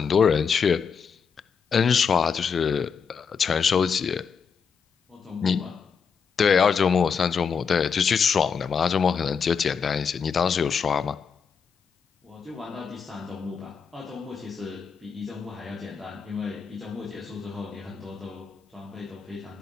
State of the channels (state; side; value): quieter; right; 6.2 dB